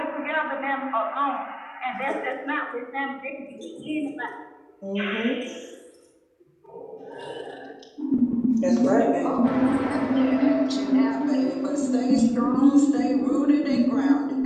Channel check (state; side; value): identical; both; correlation 1.00